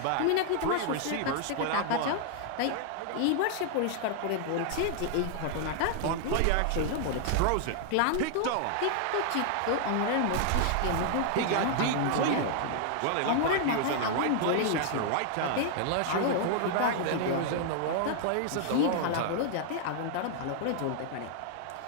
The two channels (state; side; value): different; both; correlation 0.00